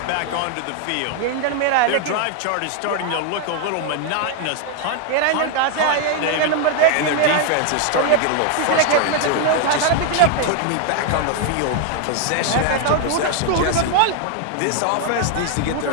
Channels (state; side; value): different; both; correlation 0.00